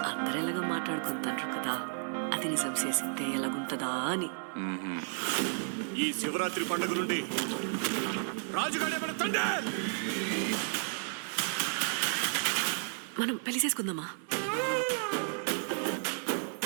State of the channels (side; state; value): left; silent; 56 dB below the other